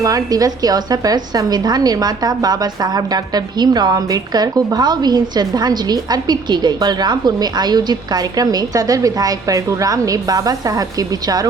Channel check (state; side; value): quieter; left; 4.3 dB